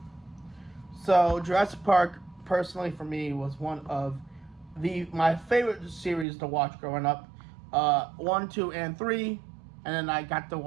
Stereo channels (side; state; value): left; drops out; at 6.2 s